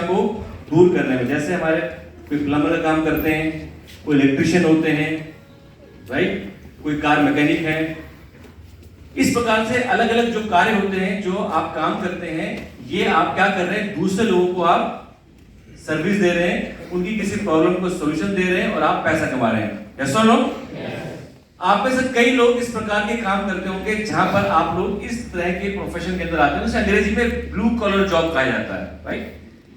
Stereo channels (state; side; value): identical; both; correlation 1.00